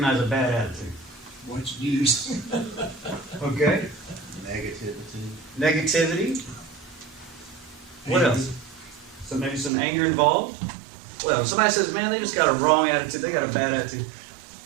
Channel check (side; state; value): left; drops out; at 9.7 s